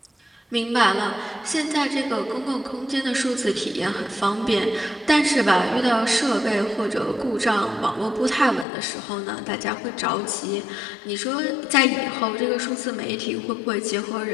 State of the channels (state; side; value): drops out; right; at 8.7 s